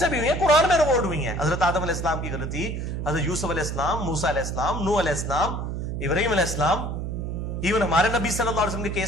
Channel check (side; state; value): right; noise; hum, 4 dB below the sound